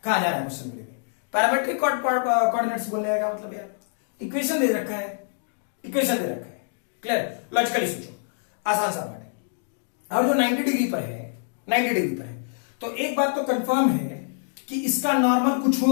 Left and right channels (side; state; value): right; silent; digital silence